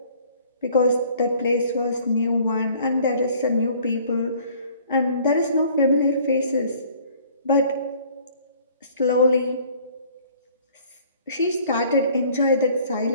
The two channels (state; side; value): inverted; both; correlation -0.55